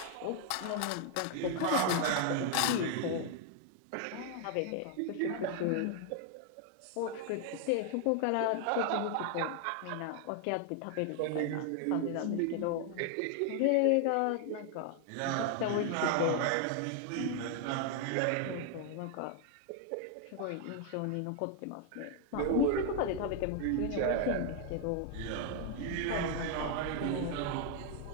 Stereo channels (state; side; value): different; both; correlation 0.00